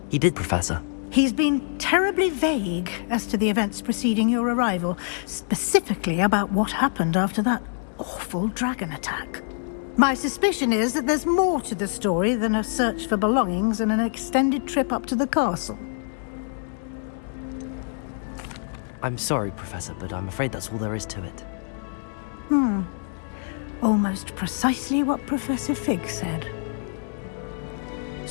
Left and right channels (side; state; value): right; silent; digital silence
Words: He did, Professor. He's been terribly vague as to the events preceding your arrival, specifically about what happened after that awful dragon attack. My suspicion is that there's more to the story than a search for belongings and an extended trip up to the castle. I'm sorry, Professor, but I'm afraid that's all there is to it. Almost precisely what Professor Fig said.